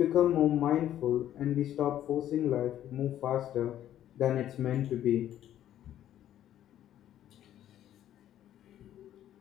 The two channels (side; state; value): right; quieter; 11.7 dB